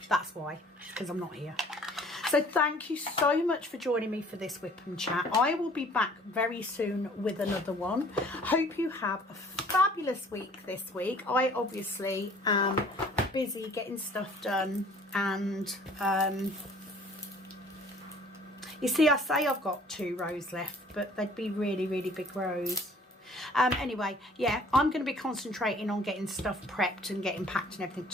that's why, because I'm not here. So thank you so much for joining me for this whip and chat. I will be back very soon with another one. Hope you have a fabulous week this week. I obviously am busy getting stuff done, and you see, I say I've got 2 rows left, but they'd be really, really big rows. Anyway, yeah, I'm going to be concentrating on getting stuff prepped and getting packed and everything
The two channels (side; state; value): both; normal; correlation 0.53